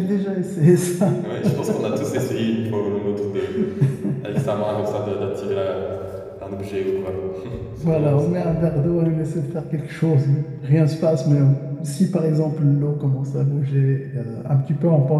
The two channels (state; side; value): identical; both; correlation 1.00